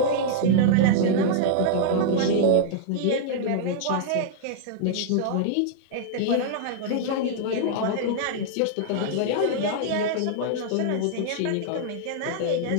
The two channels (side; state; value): both; different; correlation -0.01